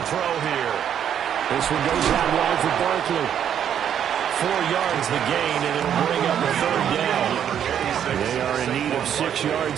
throw here. This one goes out wide for Barkley. 4 yards the gain, and it'll bring up a 3rd down. They are in need of 6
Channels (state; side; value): quieter; left; 9.2 dB